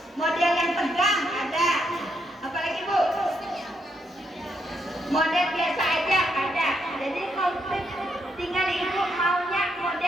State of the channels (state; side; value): normal; both; correlation 0.78